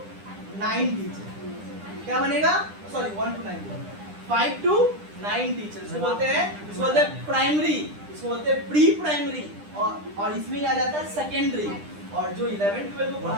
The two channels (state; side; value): late; left; 9.9 ms